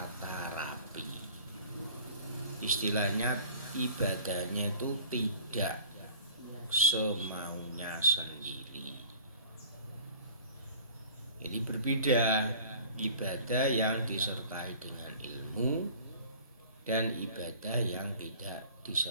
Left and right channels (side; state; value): both; inverted; correlation -0.47